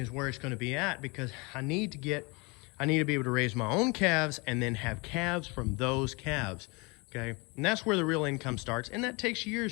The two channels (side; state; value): right; quieter; 27.9 dB